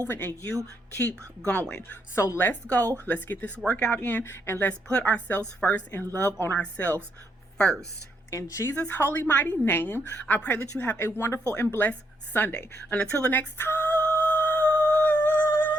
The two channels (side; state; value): both; normal; correlation 0.76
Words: and you keep going. So let's go. Let's get this workout in, and let's put ourselves first and love on ourselves first. In Jesus' holy, mighty name, I pray that you have a wonderful and blessed Sunday. And until the next time,